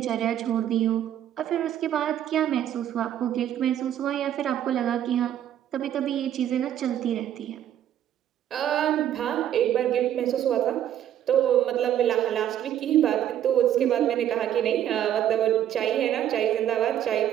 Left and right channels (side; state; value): left; quieter; 10.9 dB